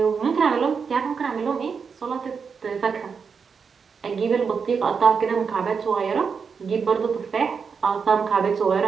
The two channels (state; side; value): quieter; left; 5.8 dB